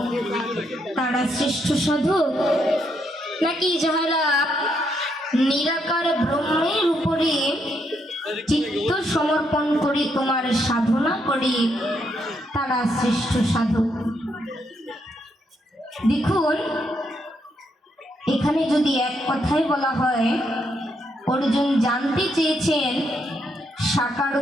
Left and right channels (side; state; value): both; normal; correlation 0.77